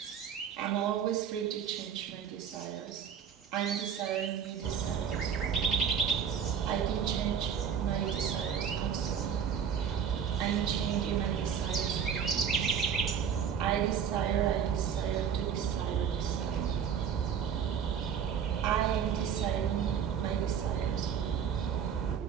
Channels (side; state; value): left; quieter; 7.8 dB